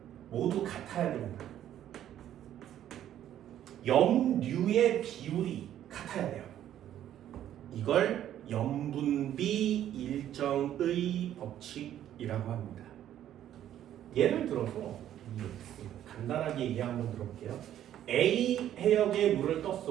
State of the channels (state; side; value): quieter; left; 11.4 dB